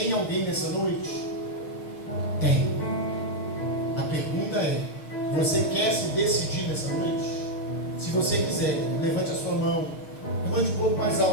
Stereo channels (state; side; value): late; right; 6.5 ms